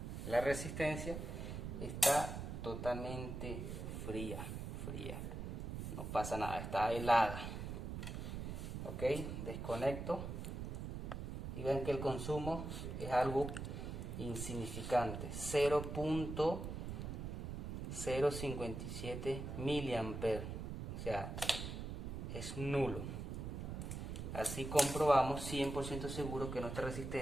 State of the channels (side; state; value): right; noise; rumble, 5 dB below the sound